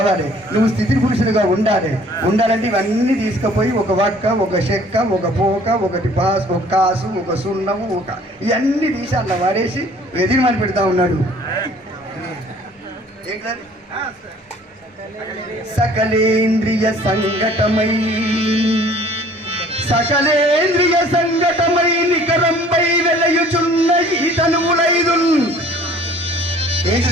నువ్వు స్థితి పురుషులుగా ఉండాలంటే ఇవన్నీ తీసుకుపోయి ఒక వక్క, ఒక చెక్క, ఒక పోక, ఒకటి పాస్, ఒక కాసు, ఒక సున్నము, ఇవన్నీ తీసి అట్లా వాడేసి ఎదిరిమని పెడతా ఉన్నాడు. ఏంటది? సకలేంద్రియ సంఘటమై నికరంపై వెలయుచున్న ఈ తనువులైదు.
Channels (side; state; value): both; normal; correlation 0.54